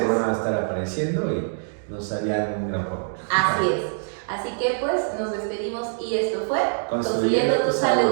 van a estar apareciendo y nos harían un gran favor. Así es. Así que pues nos despedimos y esto fue Construyendo tu salud.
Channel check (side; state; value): left; silent; digital silence